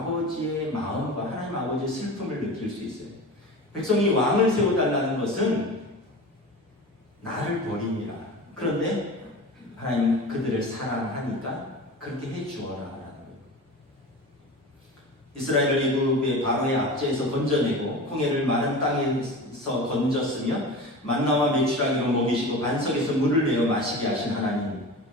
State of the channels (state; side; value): normal; both; correlation 0.33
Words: 마음과 하나님 아버지의 슬픔을 느낄 수 있어요. 백성이 왕을 세워달라는 것은 나를 버림이라. 그런데 하나님 그들을 사랑하니까 그렇게 해주어라. 이스라엘을 애굽의 바로의 압제에서 건져내고 홍해를 마른 땅에서 건졌으며 만나와 메추라기로 먹이시고 반석에서 물을 내어 마시게 하신 하나님,